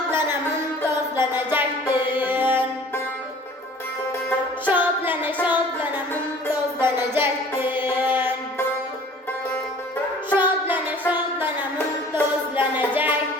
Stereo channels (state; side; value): normal; both; correlation 0.49